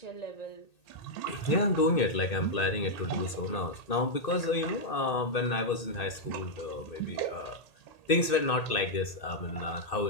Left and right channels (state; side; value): late; right; 2.6 ms